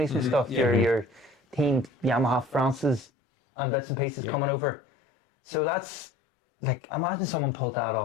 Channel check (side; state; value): right; drops out; at 3.1 s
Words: and stuff. Yeah. Your team Yamaha France's and bits and pieces coming over. So that's like, imagine someone pulled that